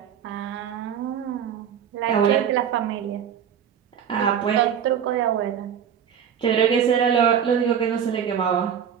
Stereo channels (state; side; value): quieter; left; 8.3 dB